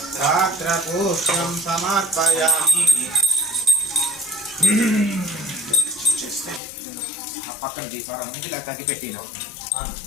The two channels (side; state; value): right; drops out; at 6.6 s